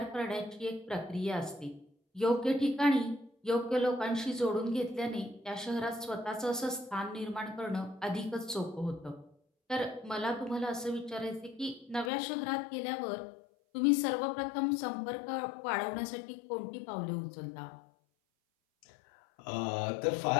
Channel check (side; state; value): right; drops out; at 12.1 s